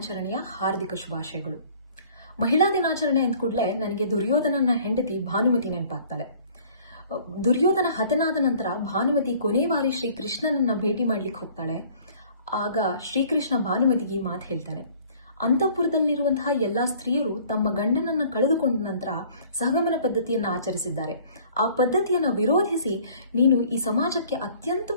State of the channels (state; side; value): inverted; both; correlation -0.53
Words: ಹಾರ್ದಿಕ ಶುಭಾಶಯಗಳು. ಮಹಿಳಾ ದಿನಾಚರಣೆ ಅಂದ ಕೂಡಲೇ ನನಗೆ ದುರ್ಯೋಧನನ ಹೆಂಡತಿ ಭಾನುಮತಿ ನೆನಪಾಗ್ತಾಳೆ. ದುರ್ಯೋಧನ ಹತನಾದ ನಂತರ ಭಾನುಮತಿ ಕೊನೆ ಬಾರಿ ಶ್ರೀಕೃಷ್ಣನನ್ನ ಭೇಟಿ ಮಾಡ್ಲಿಕ್ಕೆ ಹೋಗ್ತಾಳೆ. ಆಗ ಶ್ರೀಕೃಷ್ಣ ಭಾನುಮತಿಗೆ ಮಾತು ಹೇಳ್ತಾನೆ, ಅಂತಃಪುರದಲ್ಲಿರುವಂತಹ ಎಲ್ಲಾ ಸ್ತ್ರೀಯರು ತಮ್ಮ ಗಂಡನನ್ನ ಕಳೆದುಕೊಂಡ ನಂತರ ಸಹಗಮನ ಪದ್ಧತಿಯನ್ನು ಆಚರಿಸಿದ್ದಾರೆ. ಆ ಪದ್ಧತಿಯನ್ನು ವಿರೋಧಿಸಿ ನೀನು ಈ ಸಮಾಜಕ್ಕೆ ಅತ್ಯಂತ